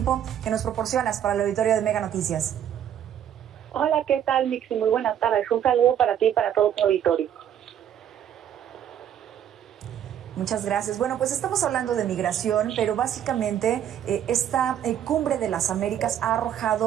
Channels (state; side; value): quieter; left; 9.9 dB